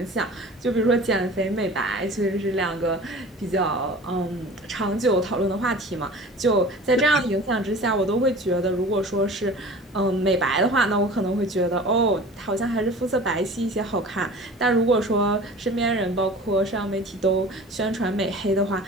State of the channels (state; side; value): normal; both; correlation 0.41